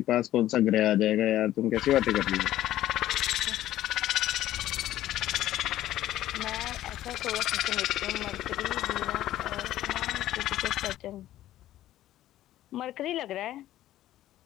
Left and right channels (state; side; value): quieter; right; 13.7 dB